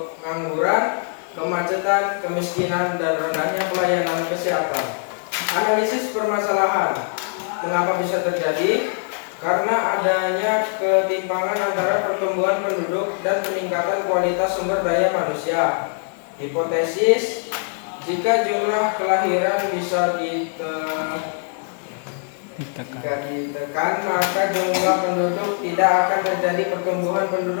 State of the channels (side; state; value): right; silent; 58 dB below the other